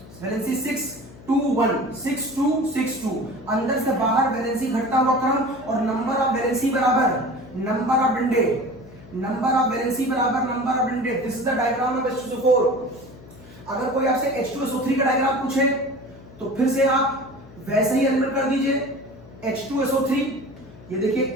valency 6 2 1 6 2 6 2, अंदर से बाहर वैलेंसी घटता हुआ क्रम, और नंबर ऑफ वैलेंसी बराबर नंबर ऑफ डंडे, नंबर ऑफ वैलेंसी बराबर नंबर ऑफ डंडे। This is the diagram of H2SO4। अगर कोई आपसे H2SO3 का डायग्राम पूछे तो फिर से आप वैसे ही एलिमेंट कर दीजिए H2SO3। ये देखिए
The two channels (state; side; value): noise; left; hum, 20 dB below the sound